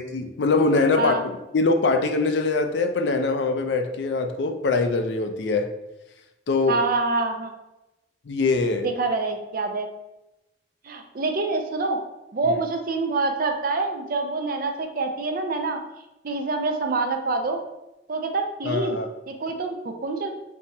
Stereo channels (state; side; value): normal; both; correlation -0.05